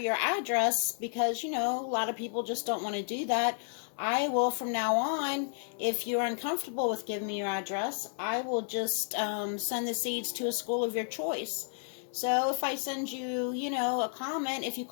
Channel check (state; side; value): silent; right; 57 dB below the other